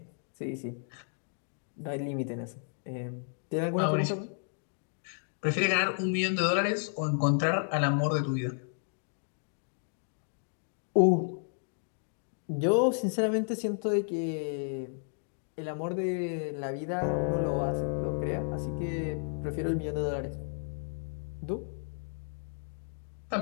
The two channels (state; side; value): silent; right; digital silence